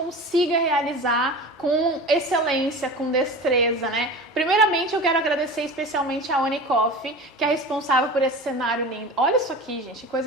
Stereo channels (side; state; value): both; normal; correlation 0.34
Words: realizar com excelência, com destreza, né? Primeiramente, eu quero agradecer especialmente a Oni Coffee, que é responsável por esse cenário lindo. Olha isso aqui, gente, que